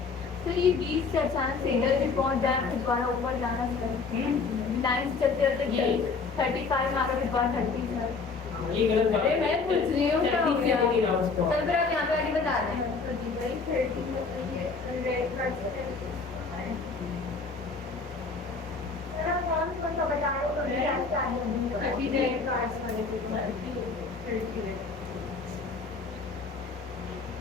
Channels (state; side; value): quieter; right; 4.5 dB